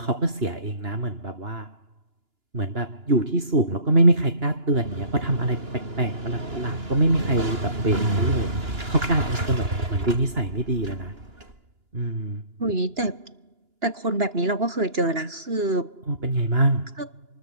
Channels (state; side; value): late; left; 2.9 ms